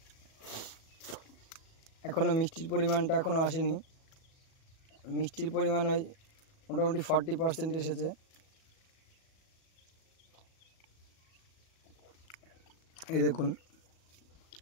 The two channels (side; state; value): right; late; 37 ms